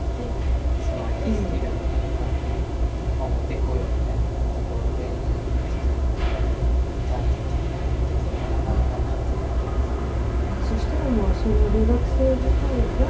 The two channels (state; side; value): identical; both; correlation 1.00